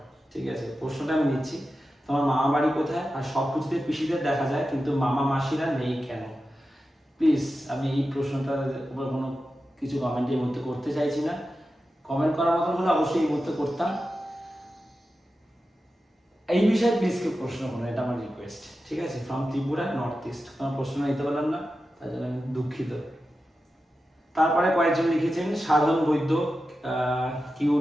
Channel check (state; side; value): normal; both; correlation 0.92